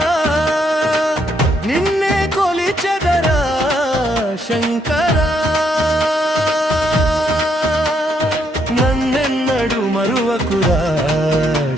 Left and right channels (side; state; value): both; normal; correlation 0.74